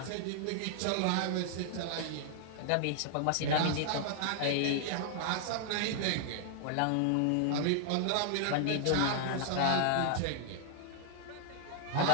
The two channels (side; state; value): both; different; correlation 0.00